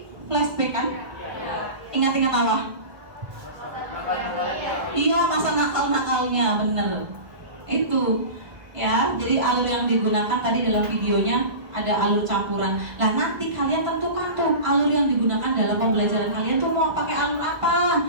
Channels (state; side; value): late; left; 1.5 ms